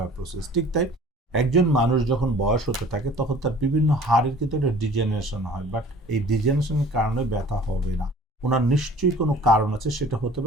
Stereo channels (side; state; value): both; normal; correlation 0.48